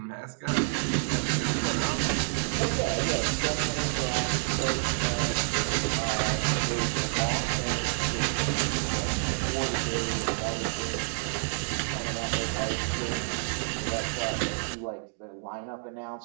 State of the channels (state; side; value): silent; left; digital silence